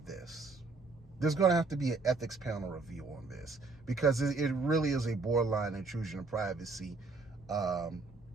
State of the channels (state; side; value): quieter; left; 3.8 dB